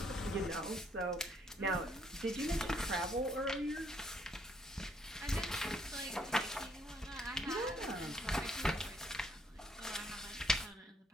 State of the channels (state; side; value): normal; both; correlation 0.69